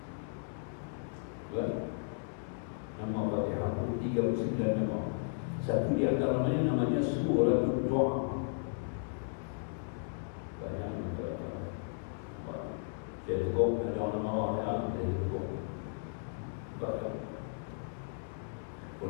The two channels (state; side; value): silent; right; digital silence